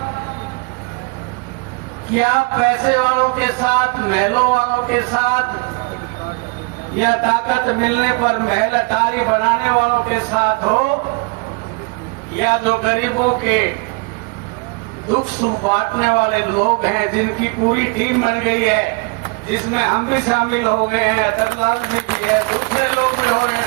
कि आप पैसे वालों के साथ, महलों वालों के साथ या ताकत मिलने पर महल अटारी बनाने वालों के साथ हो, या जो गरीबों के दुख सुख बांटने वाले लोग हैं जिनकी पूरी टीम बन गई है, जिसमें हम भी शामिल हो गए हैं, अतरलाल भी है, दूसरे लोग भी हो रहे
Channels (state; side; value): quieter; left; 29.3 dB